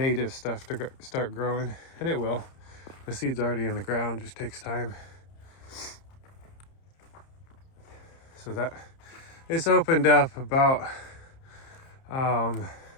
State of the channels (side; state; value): right; late; 30 ms